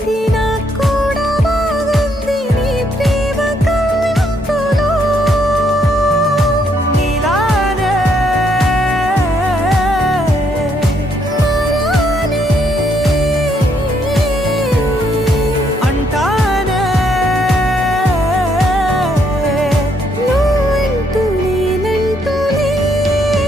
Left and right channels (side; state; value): both; normal; correlation 0.72